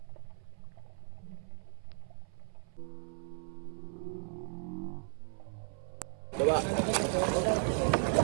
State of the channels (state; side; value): silent; left; 54 dB below the other